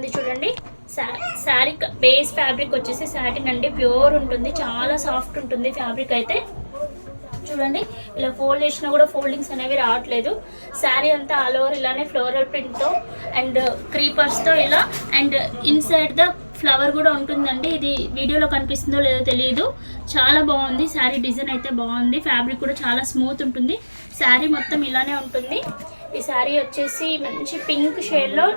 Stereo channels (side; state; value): both; inverted; correlation -1.00